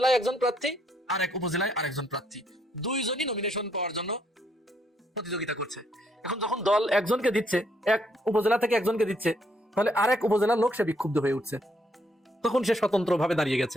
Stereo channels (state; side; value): normal; both; correlation 0.71